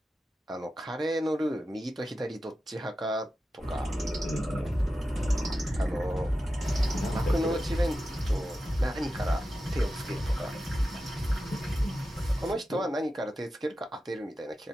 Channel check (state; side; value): normal; both; correlation 0.92